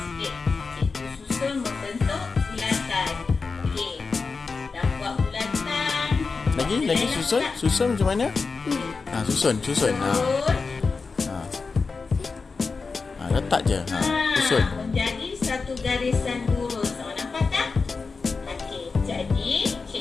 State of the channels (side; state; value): right; quieter; 4.5 dB